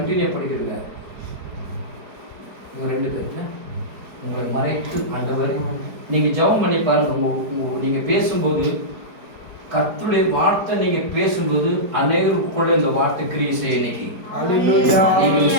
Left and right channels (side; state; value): left; late; 4.7 ms